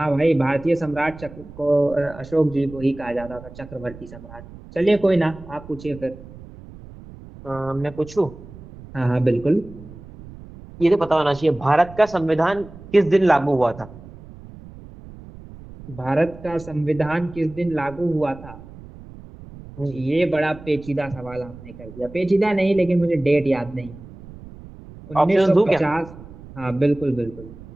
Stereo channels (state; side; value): noise; right; rumble, 17 dB below the sound